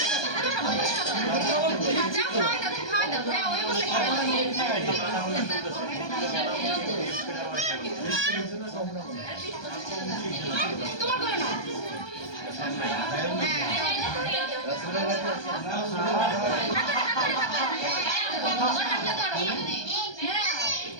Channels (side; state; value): right; late; 1.2 ms